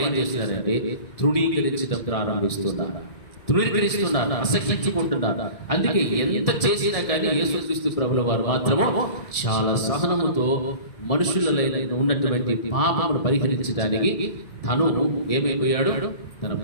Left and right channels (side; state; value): right; late; 1.7 ms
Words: ఏం చేస్తున్నారంటే తృణీకరించడం ప్రారంభిస్తున్నారు, అసహించుకుంటున్నారు. అందుకే ఎంత చేసినా కానీ యేసుక్రీస్తు ప్రభుల వారు మాత్రము చాలా సహనముతో మనుషులలో ఉన్నటువంటి పాపమును పరిహరించడానికి తను ఏమైపోయాడు? తన